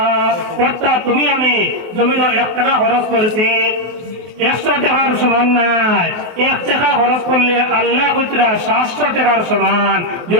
অর্থাৎ তুমি আমি জমিন 1 টাকা খরচ করছি, 100 টাকার সমান নাই, 1 টাকা খরচ করলে আল্লাহ কইরা 700 টাকার সমান।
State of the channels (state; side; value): late; left; 24 ms